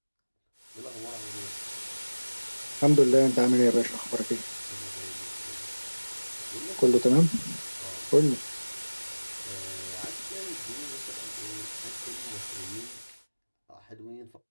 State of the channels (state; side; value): inverted; both; correlation -1.00